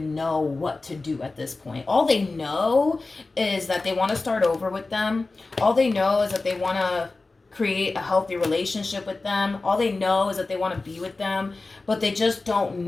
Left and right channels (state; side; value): quieter; right; 3.5 dB